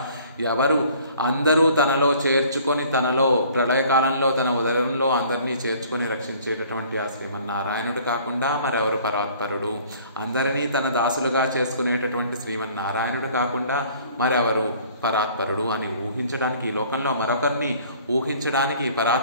ఎవరు అందరూ తనలో చేర్చుకొని, తనలో ప్రళయకాలంలో తన ఉదరంలో అందరినీ చేర్చుకొని రక్షించేటటువంటి ఆ శ్రీమన్నారాయణుడు కాకుండా మరెవరు పరాత్పరుడు? అందరినీ తన దాసులుగా చేసుకునేటటువంటి శ్రీమన్నారాయణుడు కాకుండా మరెవరు పరాత్పరుడు అని ఊహించడానికి, ఈ లోకంలో మరొకరిని ఊహించడానికి,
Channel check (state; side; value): inverted; both; correlation -0.54